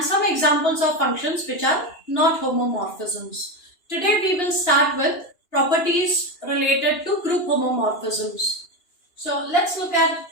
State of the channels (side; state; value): right; late; 2.9 ms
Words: some examples of functions which are not homomorphisms. Today we will start with properties related to group homomorphisms. So let's look at